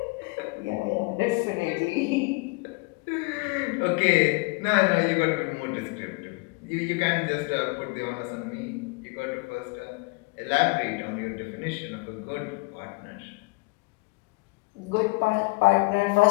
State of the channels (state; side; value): quieter; right; 28.4 dB